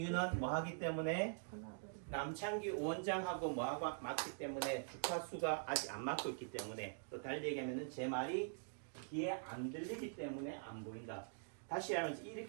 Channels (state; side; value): silent; left; digital silence